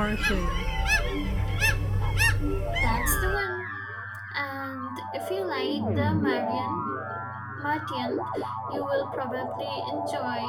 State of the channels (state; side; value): identical; both; correlation 1.00